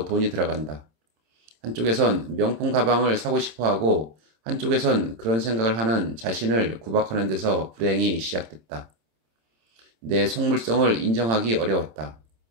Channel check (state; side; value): late; left; 26 ms